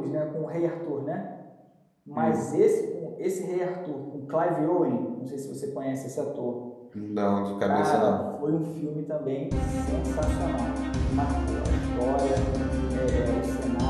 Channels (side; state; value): both; identical; correlation 1.00